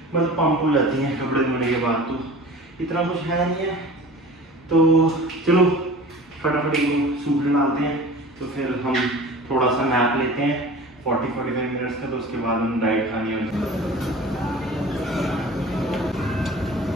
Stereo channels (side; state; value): both; normal; correlation 0.41